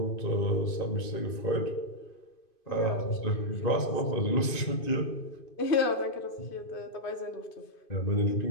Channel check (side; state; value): right; late; 2.5 ms